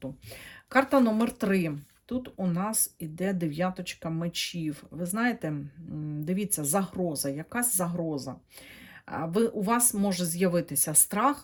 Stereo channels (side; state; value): both; identical; correlation 1.00